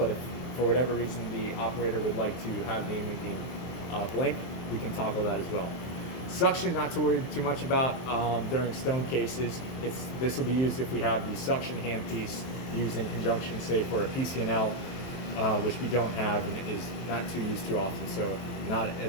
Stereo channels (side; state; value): right; late; 23 ms